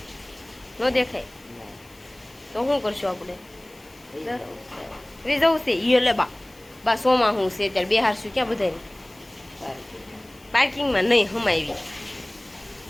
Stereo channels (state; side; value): noise; left; hiss, 27 dB below the sound